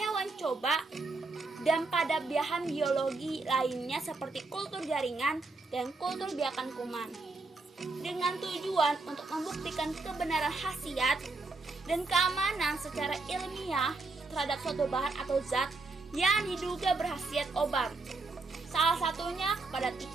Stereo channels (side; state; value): left; quieter; 3.6 dB